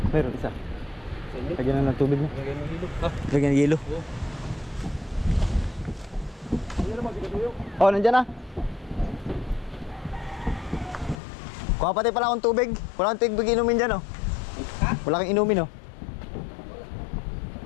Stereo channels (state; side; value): drops out; right; at 11.2 s